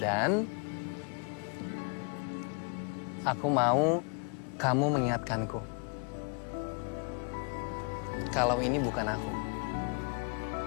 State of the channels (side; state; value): right; quieter; 36.3 dB